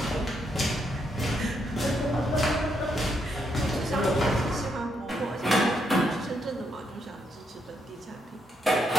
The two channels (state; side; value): normal; both; correlation 0.77